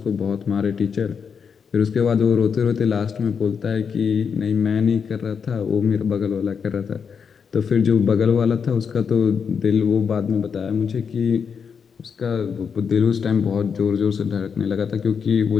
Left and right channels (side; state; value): right; quieter; 6.5 dB